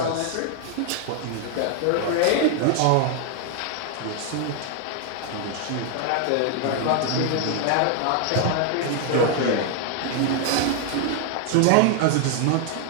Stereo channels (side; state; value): both; different; correlation 0.00